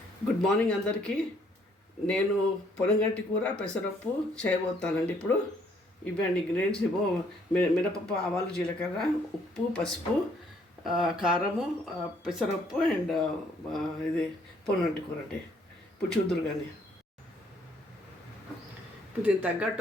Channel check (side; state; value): both; normal; correlation 0.66